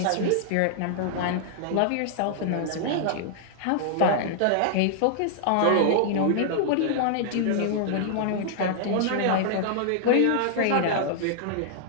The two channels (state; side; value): different; both; correlation -0.01